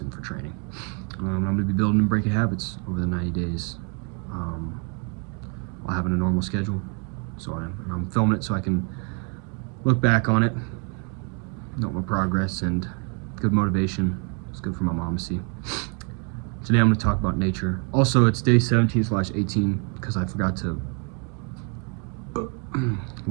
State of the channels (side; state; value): left; quieter; 37.7 dB